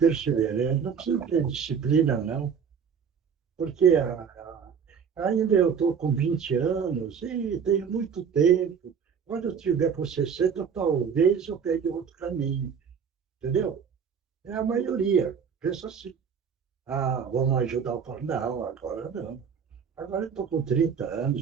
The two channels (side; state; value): left; quieter; 6.8 dB